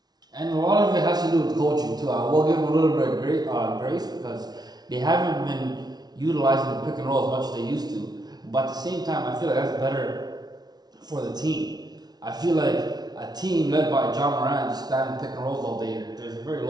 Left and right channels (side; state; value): left; late; 0.19 ms